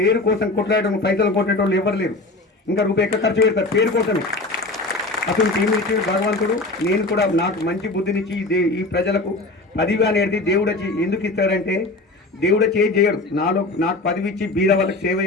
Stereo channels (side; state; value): right; quieter; 3.0 dB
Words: కోసం కొట్లాడటం, పైసలు కొట్టేటోళ్ళు ఎవరు లేరు. ఇంకా రూపాయి ఎక్కడ ఖర్చు పెడతారు పేరు కోసమే. అసలు టీం ఇచ్చి భగవంతుడు, నేను కూడా నాకు మంచి బుద్ధినిచ్చి ఈ ప్రజలకు పదవి అనేది దేవుడు వచ్చి ఎందుకు ఇస్తాడంటే, దేవుడు చేయడు. నాకు పదవి ఇచ్చి బీద వాళ్ళకి సేవ